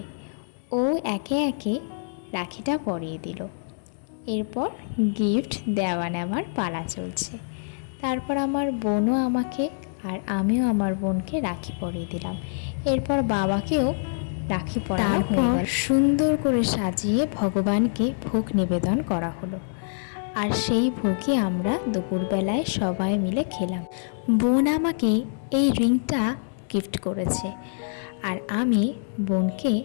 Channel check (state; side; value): silent; right; digital silence